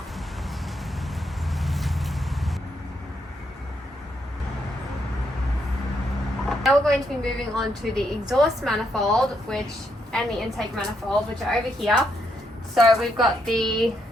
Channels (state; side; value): normal; both; correlation 0.77